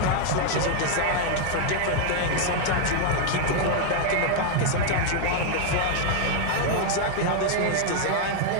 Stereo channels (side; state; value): both; different; correlation 0.00